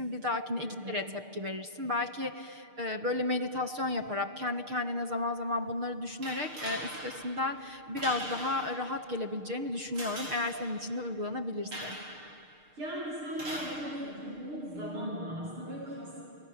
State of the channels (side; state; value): left; late; 6.6 ms